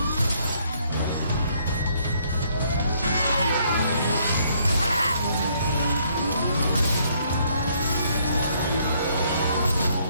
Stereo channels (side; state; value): both; inverted; correlation -0.68